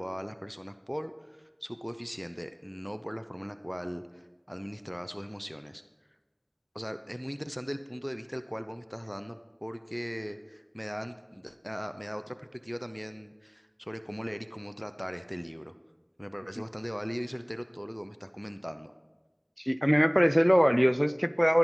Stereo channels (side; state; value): both; identical; correlation 1.00